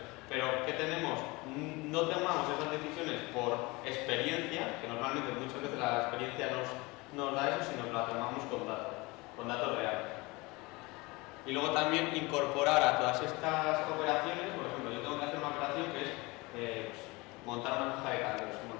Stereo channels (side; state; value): right; quieter; 24.0 dB